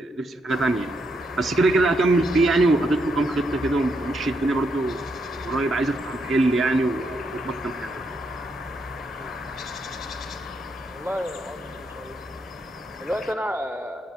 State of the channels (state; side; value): normal; both; correlation 0.79